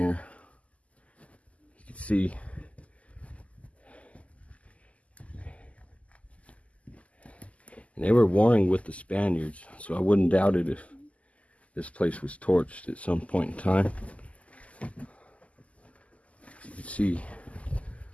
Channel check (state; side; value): late; right; 0.067 ms